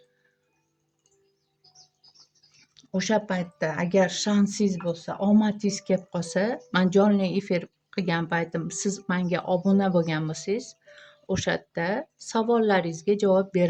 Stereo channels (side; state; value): both; identical; correlation 1.00